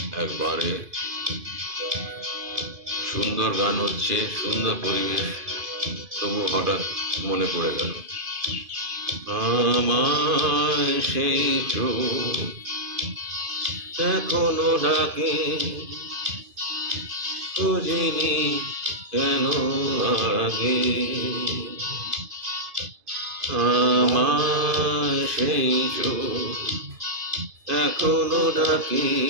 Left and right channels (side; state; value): left; late; 2.5 ms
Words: একবারে, সুন্দর গান হচ্ছে, সুন্দর পরিবেশ, তবু হঠাৎ মনে পড়ে গেল আমার সেই চোখ এখনো ডাকে, খুঁজিনি কেন আগে। আমার সেই চোখ এখনো ডাকে,